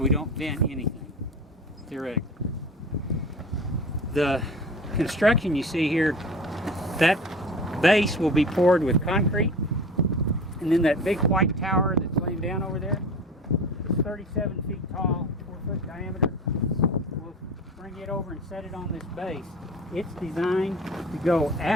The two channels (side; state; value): both; normal; correlation 0.36